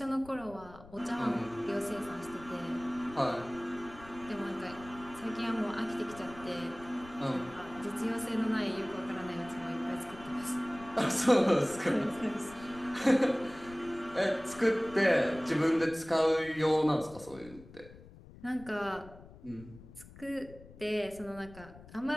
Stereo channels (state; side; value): noise; left; rumble, 19 dB below the sound